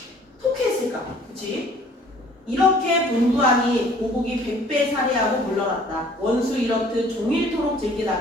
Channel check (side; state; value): both; normal; correlation 0.54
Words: 통쾌했을까? 그치? 이렇게 분부하니 보국이 100배 살해하고 물러났다. 원수 이렇듯 종일토록